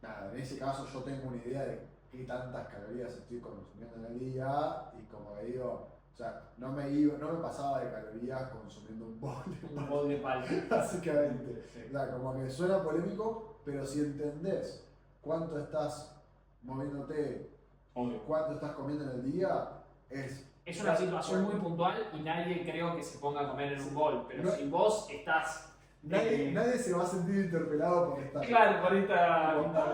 nada, en ese caso yo tengo una idea de qué tantas calorías estoy consumiendo en el día y como que digo, o sea, no me pasaba de calorías consumiendo un bol de Un bol de palta. básicamente. Sí. O sea, como que suena polémico, pero si entendés cuánto estás moviéndote, Obvio. cuánto estás comiendo en el día, es... Es una situación muy puntual y nadie creo que se ponga a comer en un bol, pero No- si vos estás. Nadie se va a sentir interpelado por esta... Claro, por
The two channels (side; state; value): both; identical; correlation 1.00